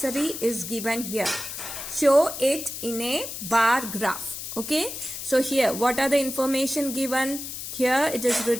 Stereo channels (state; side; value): noise; left; hiss, 8 dB below the sound